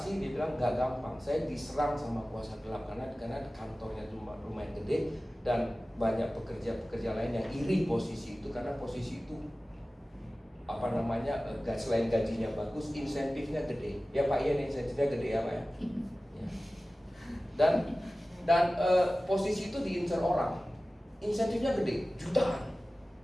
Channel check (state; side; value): normal; both; correlation 0.97